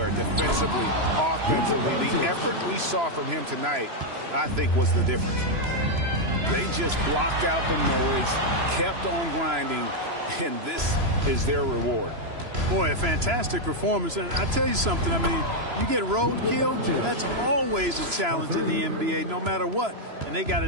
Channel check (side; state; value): left; late; 3.0 ms